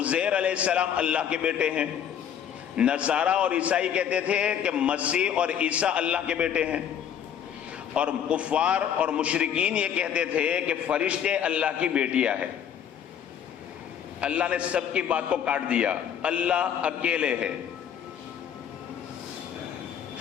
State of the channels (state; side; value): quieter; right; 9.0 dB